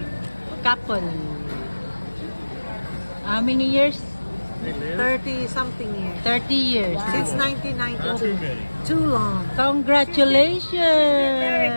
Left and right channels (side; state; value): both; inverted; correlation -1.00